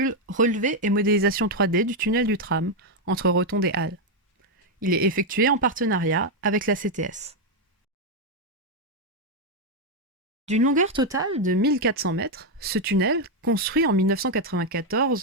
Relevé et modélisation 3D du tunnel du tram entre Rotonde et Halle. Il est effectué en partenariat avec la CTS. D'une longueur totale de 1400 mètres, ce tunnel, construit en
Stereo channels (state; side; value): normal; both; correlation 0.02